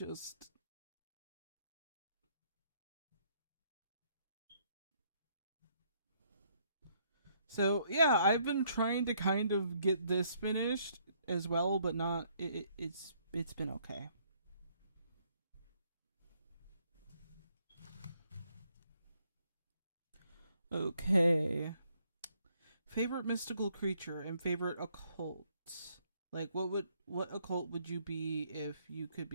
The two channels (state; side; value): inverted; both; correlation -0.69